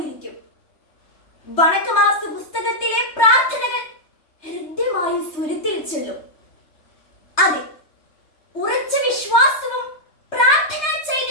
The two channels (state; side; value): late; right; 3.3 ms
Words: വണക്കമാസ പുസ്തകത്തിലെ പ്രാർത്ഥനകൾ ഹൃദ്യമായി സ്വരത്തിൽ ചൊല്ലും. അതെ, ഉറച്ച വിശ്വാസവും പ്രാർത്ഥനാ